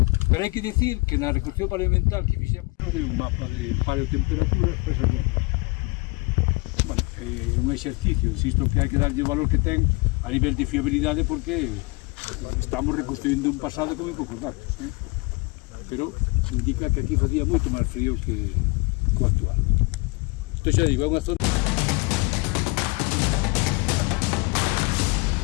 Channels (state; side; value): quieter; right; 26.9 dB